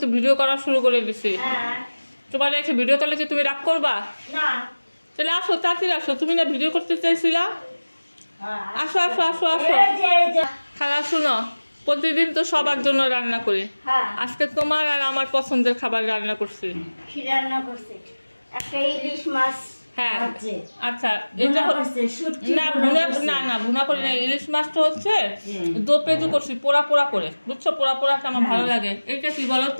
ভিডিও করা শুরু করে দিছি। তোমার রেখে ভিডিও করলে কি তুমি রাগ করবা? না। তাহলে আসো, তাড়াতাড়ি আসো। তুমি না ভিডিও করতে চাইছিলা? আসো আসো আসো আসো। খালা শুনো, প্রতিদিন তো সবার জন্য রান্না করি। আজকে তোমার আর আমার পছন্দের খাবার রান্না করছি। কি রান্না করছে? একটা ইলিশ মাছ। হ্যাঁ আচ্ছা, এটা না না ভুনা করি না। ইলিশ মাছটা হচ্ছে দো পেঁজু করছি পোড়া পোড়া করে, বুঝছো? পোড়া পোড়াটা আমার ভালো লাগে। এটা কি বলো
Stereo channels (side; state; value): both; inverted; correlation -1.00